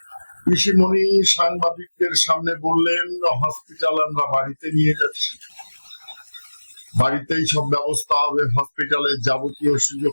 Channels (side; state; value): both; inverted; correlation -1.00